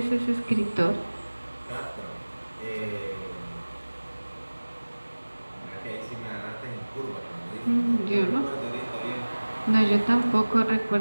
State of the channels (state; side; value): inverted; both; correlation -1.00